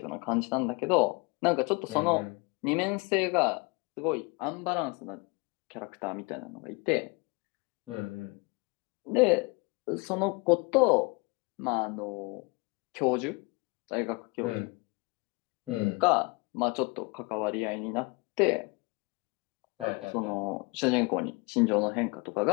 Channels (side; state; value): right; quieter; 28.1 dB